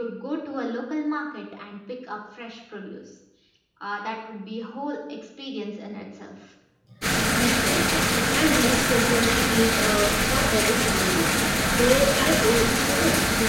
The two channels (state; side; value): identical; both; correlation 1.00